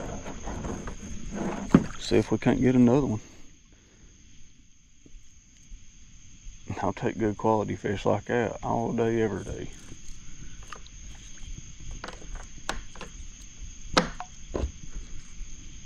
See if we can't get another one. I'll take good quality fish like that all day, every day.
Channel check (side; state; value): both; identical; correlation 1.00